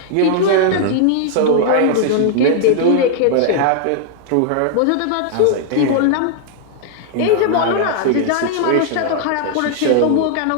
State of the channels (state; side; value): different; both; correlation 0.00